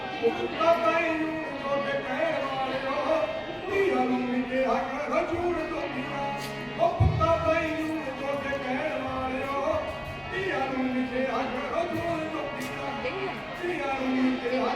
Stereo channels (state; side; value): identical; both; correlation 1.00